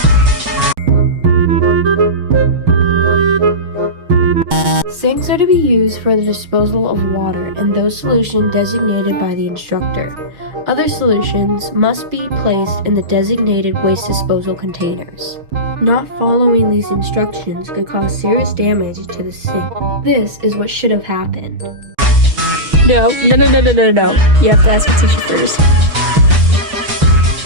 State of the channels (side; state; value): left; late; 6.3 ms